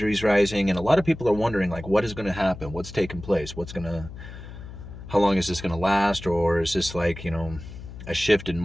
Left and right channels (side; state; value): left; noise; hum, 13 dB below the sound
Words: rising. And a lot of people are wondering like what is going to happen? What's taking place? How long is this going to last? Or is this like, a shift in